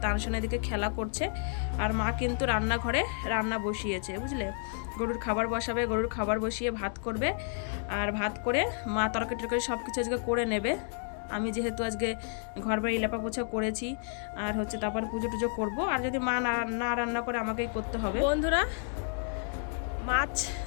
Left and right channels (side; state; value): right; silent; 57 dB below the other